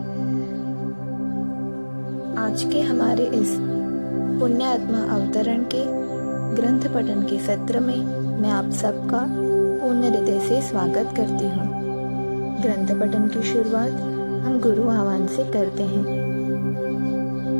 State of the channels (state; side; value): inverted; both; correlation -1.00